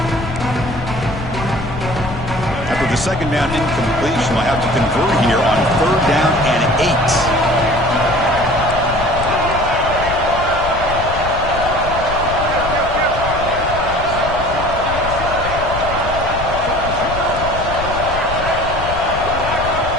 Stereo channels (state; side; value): noise; left; rumble, 8 dB below the sound